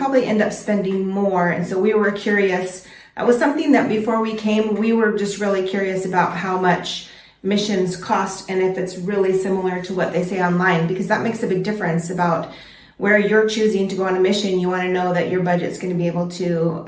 end up spending more. And so we were curious. That was something that before we came, we were just really curious about how much missions cost and if it's really similar to what they say online, because that makes a big difference about where you're choosing to go on a mission. You want to know that your budget's going to be able to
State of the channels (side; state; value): both; identical; correlation 1.00